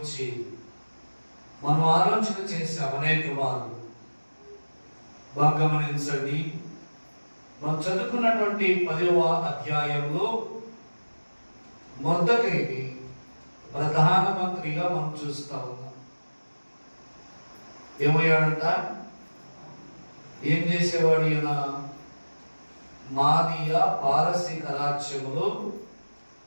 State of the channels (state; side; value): inverted; both; correlation -1.00